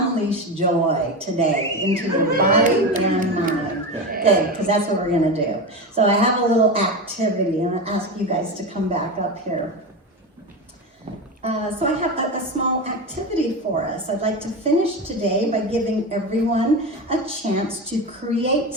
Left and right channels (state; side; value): normal; both; correlation 0.21